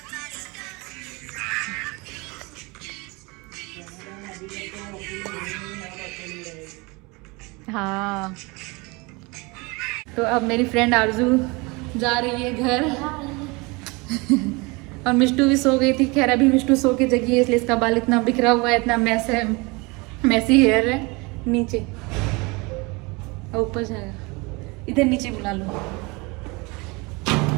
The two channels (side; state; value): left; quieter; 26.6 dB